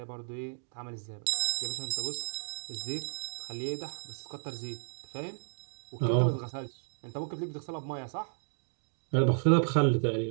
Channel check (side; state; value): left; silent; digital silence